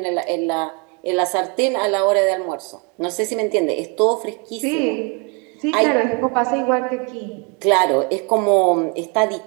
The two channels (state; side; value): quieter; left; 32.8 dB